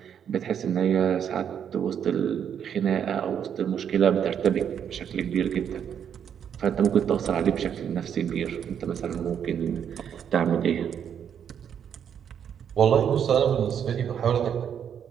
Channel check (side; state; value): left; quieter; 8.4 dB